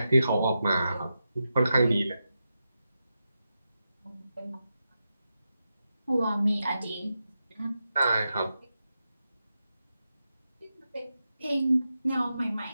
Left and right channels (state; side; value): inverted; both; correlation -0.89